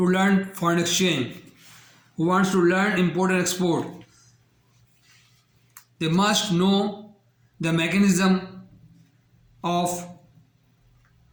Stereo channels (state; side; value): identical; both; correlation 1.00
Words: learn foreign exchange, who wants to learn import and export, they must know the mechanism of